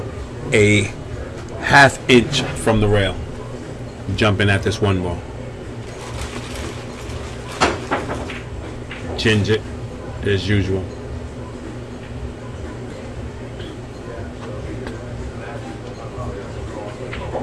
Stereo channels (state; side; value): identical; both; correlation 1.00